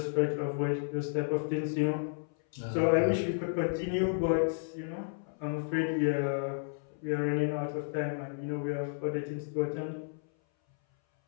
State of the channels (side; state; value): right; silent; 56 dB below the other